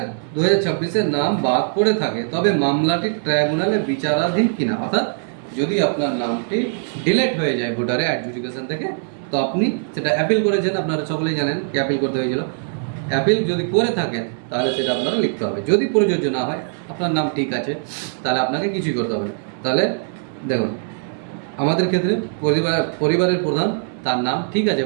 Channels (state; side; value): silent; left; 65 dB below the other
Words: 2026-এর নাম বাদ পড়ে থাকে তবে মামলাটি ট্রাইব্যুনালে বিচারাধীন কিনা, অর্থাৎ যদি আপনার নামটি ডিলেট হয়ে যায় ভোটারে অ্যাডজুডিকেশন থেকে, তো আপনি সেটা অ্যাপিল করেছেন, আপনারা সকলেই জানেন কি অ্যাপিল করতে হয়েছিল। অ্যাপিল যদি করে থাকেন তাহলে সেটা আপনারা লিখতে হবে। যদি প্রযোজ্য না হয়, আপনার নাম ঠিক আছে, তাহলে আপনাকে কিছুই করতে হবে না। তাহলে দেখুন আমাদের ক্ষেত্রে পরিবারের প্রধান তার নাম ঠিক আছে